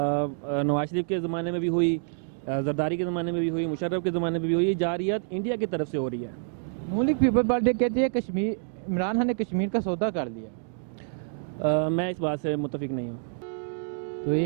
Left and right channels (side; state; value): left; silent; digital silence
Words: नवाज शरीफ के ज़माने में भी हुई, जरदारी के ज़माने में भी हुई, मुशर्रफ के ज़माने में भी हुई। जारहियत इंडिया की तरफ से हो रही है। नून लीग पीपल पार्टी कहती है कश्मीर, इमरान खान ने कश्मीर का सौदा कर लिया। मैं इस बात से मुत्तफिक नहीं हूँ। तो